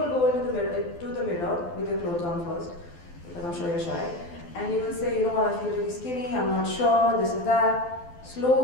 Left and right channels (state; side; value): late; right; 12 ms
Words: go into the mirror with your clothes on first, because I'm sure you're shy, and you will say, you know what, I feel really skinny, I'm not sure, this is that.